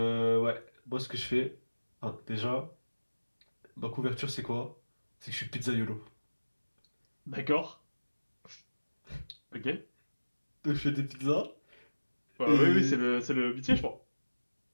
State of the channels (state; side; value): inverted; both; correlation -1.00